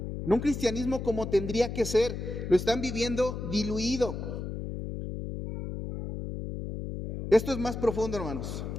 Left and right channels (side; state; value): left; noise; hum, 6 dB below the sound